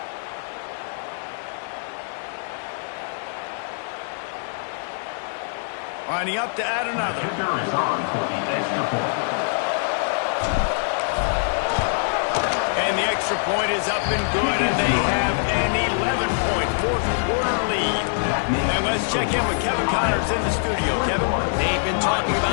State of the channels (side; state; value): right; silent; digital silence